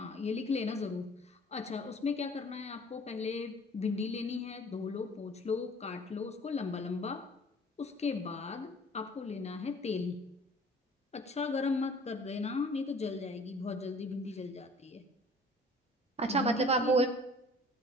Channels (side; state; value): both; normal; correlation 0.50